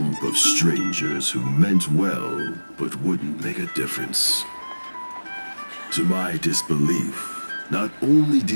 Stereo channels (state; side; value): inverted; both; correlation -1.00